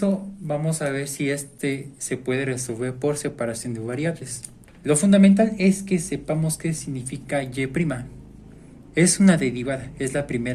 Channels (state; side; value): identical; both; correlation 1.00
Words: vamos a ver si este se puede resolver por separación de variables. Lo fundamental es que sepamos qué significa y'. Es una derivada, es la